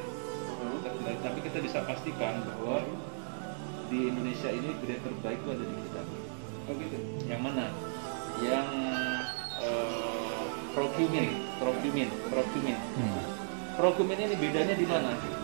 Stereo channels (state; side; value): silent; left; digital silence